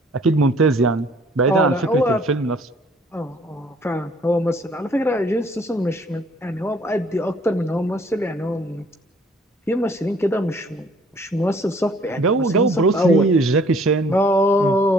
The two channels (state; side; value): normal; both; correlation 0.58